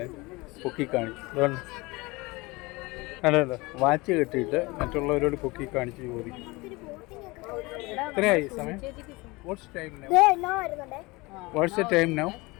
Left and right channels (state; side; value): quieter; right; 23.7 dB